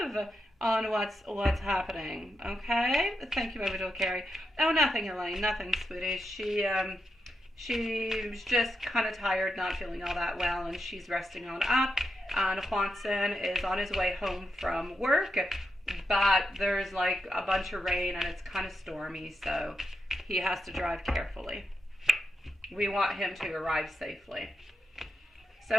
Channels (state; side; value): normal; both; correlation 0.86